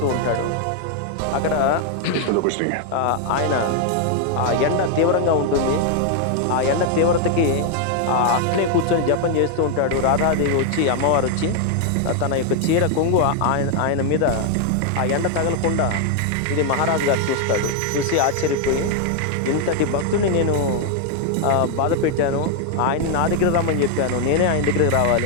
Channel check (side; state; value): both; different; correlation 0.00